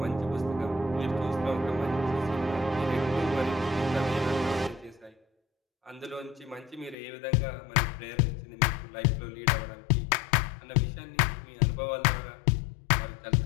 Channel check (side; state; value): right; drops out; at 7.0 s